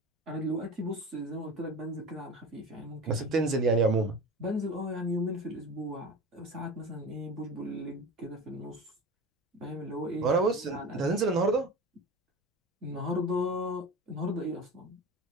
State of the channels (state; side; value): normal; both; correlation 0.33